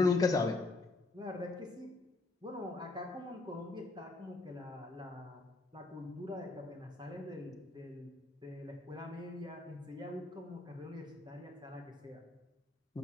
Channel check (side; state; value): right; quieter; 3.3 dB